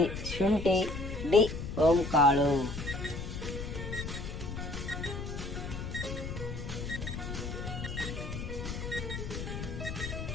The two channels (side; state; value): left; noise; rumble, 6 dB below the sound